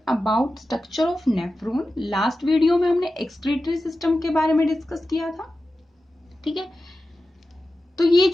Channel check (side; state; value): both; normal; correlation 0.93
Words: about structure of nephron. Last video में हमने excretory system के बारे में discuss किया था. ठीक है, तो ये